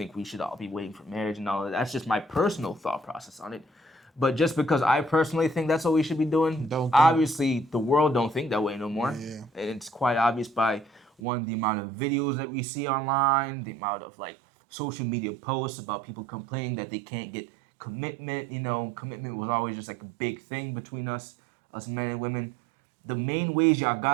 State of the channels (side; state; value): left; drops out; at 11.2 s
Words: we should all be waiting for marriage and all that. That's just my personal thought process on it. But just because I personally think that's what we should be doing, obviously the world don't think that way no more. Yeah. And it's quite obvious by the amount of videos that we see online, the amount of like social media posts about people complaining that they can't get commitment. Commitment was always just like a big thing between us men and women. The main ways y'all